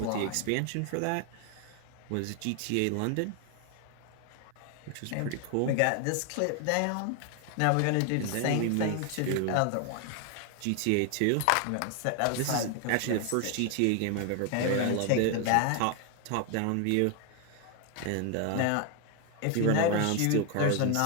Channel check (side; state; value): both; different; correlation 0.00